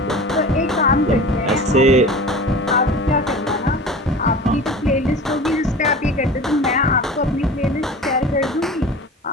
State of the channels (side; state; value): both; normal; correlation 0.36